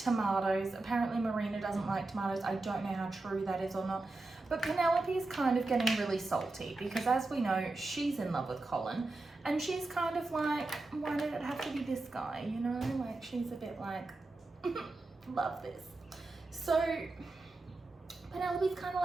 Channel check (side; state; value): left; quieter; 3.2 dB